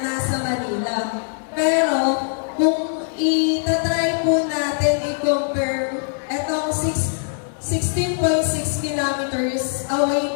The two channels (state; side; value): silent; right; digital silence